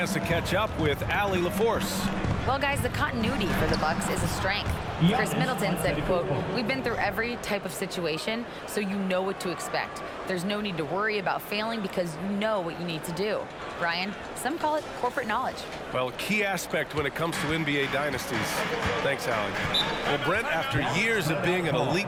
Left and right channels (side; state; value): both; identical; correlation 1.00